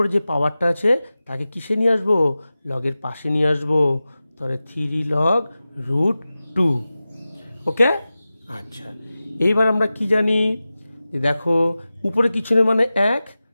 যে পাওয়ারটা আছে তাকে কিসে নিয়ে আসবো, লগের পাশে নিয়ে আসবো, তাহলে 3 লগ √2। ওকে, আচ্ছা এইবার আমরা কি জানি, দেখো উপরে কিছু নেই মানে 1,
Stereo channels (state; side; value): inverted; both; correlation -0.95